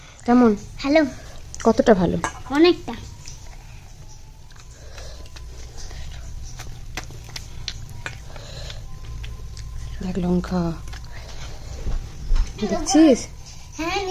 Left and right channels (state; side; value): identical; both; correlation 1.00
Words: কেমন? হ্যালো। কতটা ভালো? অনেকটা। দেখ লঙ্কা দেখছিস? হ্যাঁ